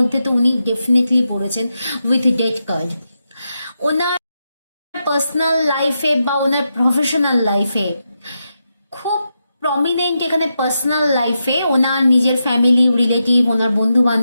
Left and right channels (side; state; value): both; inverted; correlation -0.86